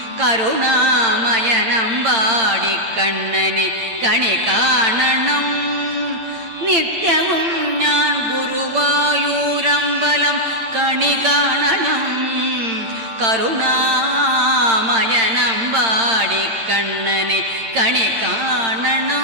കരുണാമയനമ്പാടിക്കണ്ണനെ കണി കാണണം. നിത്യവും ഞാൻ ഗുരുവായൂരമ്പലം കണി കാണണം കരുണാമയനമ്പാടിക്കണ്ണനെ കണി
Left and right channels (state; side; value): late; left; 8.8 ms